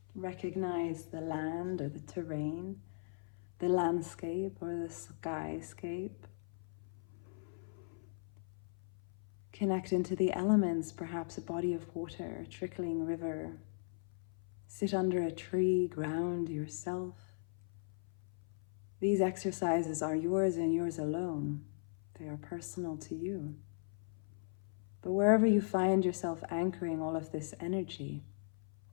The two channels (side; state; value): right; silent; 52 dB below the other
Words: Recognize the land or the terrain, the landscape or the skyscape. Connect into the elements, perhaps a body of water, a trickling river. Sit under a tree, ground yourself. These exercises are yours and yours alone. They are personal to you. But wherever you find yourself anchoring all of this energy,